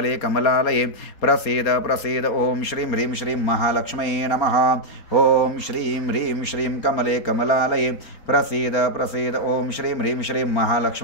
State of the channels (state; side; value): late; right; 4.3 ms